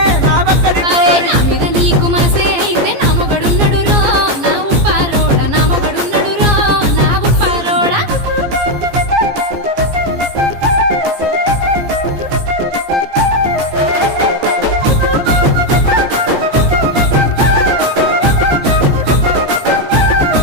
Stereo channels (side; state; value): left; late; 15 ms